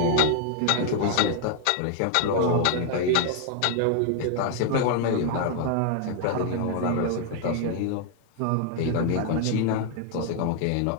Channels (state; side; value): different; both; correlation 0.00